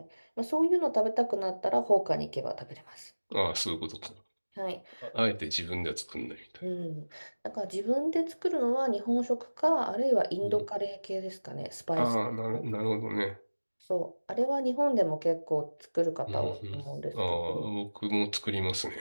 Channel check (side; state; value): both; inverted; correlation -1.00